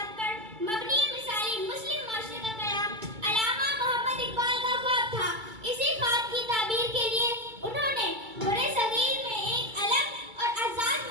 पर मबनी मिसाली मुस्लिम मुआशरे का क़याम अल्लामा मोहम्मद इक़बाल का ख्वाब था। इसी ख्वाब की ताबीर के लिए उन्होंने बड़े सगीर में एक अलग और आज़ाद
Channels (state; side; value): late; left; 2.3 ms